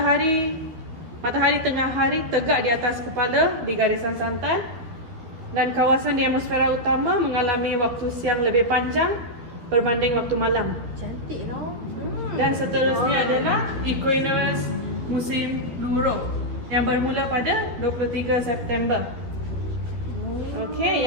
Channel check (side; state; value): left; late; 13 ms